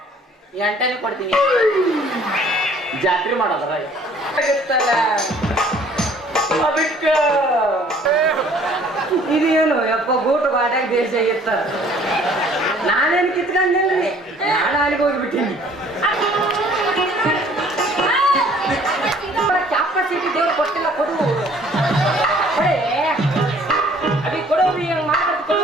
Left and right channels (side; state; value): both; normal; correlation 0.56